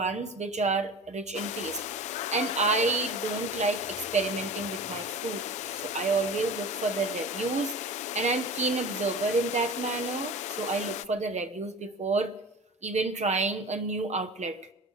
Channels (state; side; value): normal; both; correlation 0.36